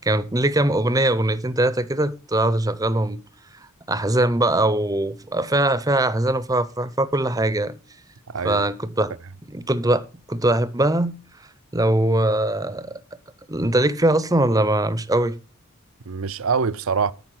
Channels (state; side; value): normal; both; correlation 0.60